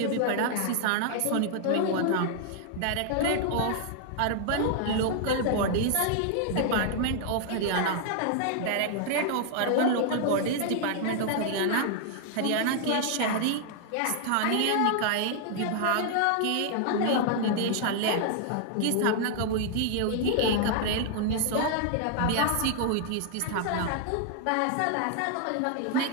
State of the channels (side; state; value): both; different; correlation 0.00